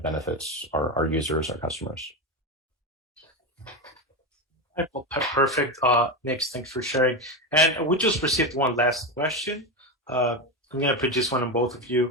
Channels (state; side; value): normal; both; correlation 0.15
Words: benefits our users, our customers. Well, perfect. Nick, thanks for sharing. And we just received one last question. I'm going to produce one on both of